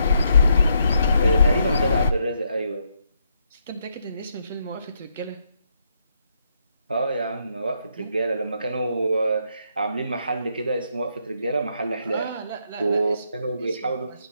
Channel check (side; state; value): both; inverted; correlation -0.77